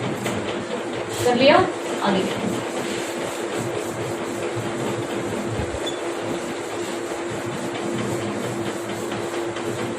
कर लिया, आगे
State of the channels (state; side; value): identical; both; correlation 1.00